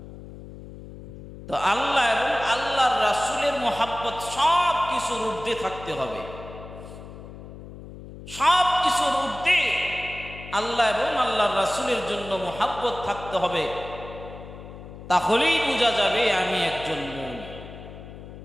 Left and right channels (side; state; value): left; noise; hum, 14 dB below the sound